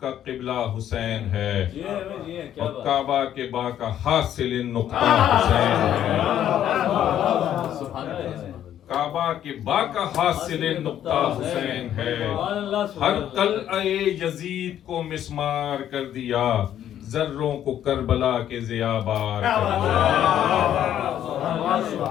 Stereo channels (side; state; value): right; quieter; 10.8 dB